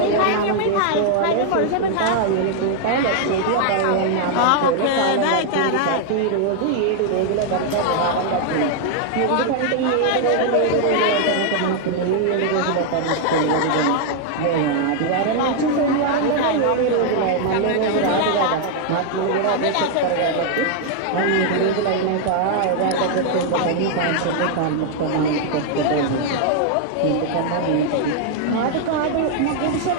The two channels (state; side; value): different; both; correlation 0.00